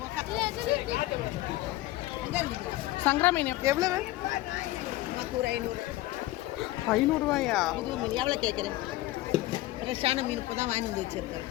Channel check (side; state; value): right; quieter; 17.3 dB